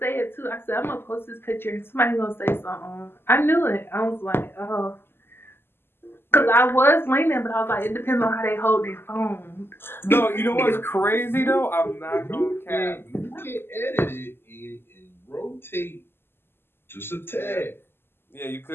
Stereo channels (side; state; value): right; late; 0.11 ms